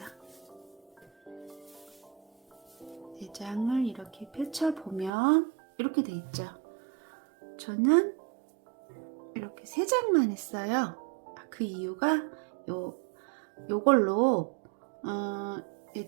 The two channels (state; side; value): drops out; left; at 5.1 s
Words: 4장을 이렇게 펼쳐보면 이렇게 돼 있죠. 저는 이렇게 3장만 했어요. 그 이유가 요걸로